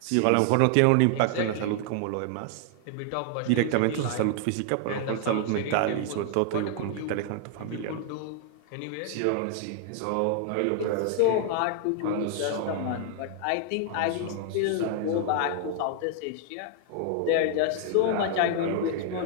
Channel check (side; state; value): both; different; correlation 0.00